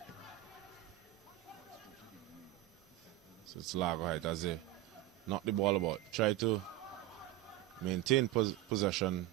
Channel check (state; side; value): quieter; left; 15.2 dB